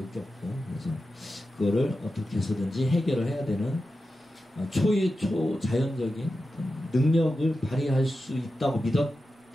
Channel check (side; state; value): both; normal; correlation 0.91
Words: 그래서 그거를 어떻게 해서든지 해결을 해야 되는 초자연적인 능력을 발휘할 수 있다고